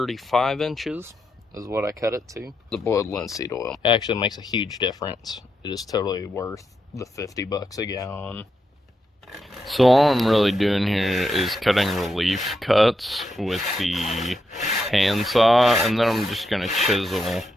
inches is what I cut it to. The boiled linseed oil actually makes a huge difference. It is totally worth the $50 a gallon. So all I'm really doing here is cutting relief cuts with the handsaw, and then I'm just going to chisel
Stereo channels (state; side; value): normal; both; correlation 0.83